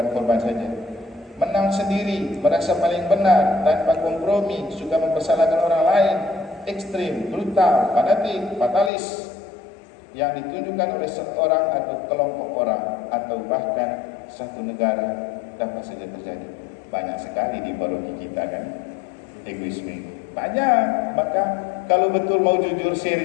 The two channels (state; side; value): drops out; right; at 8.9 s